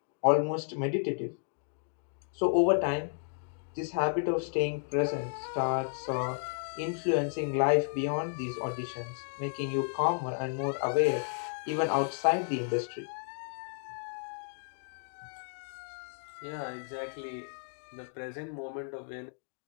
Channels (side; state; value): right; silent; digital silence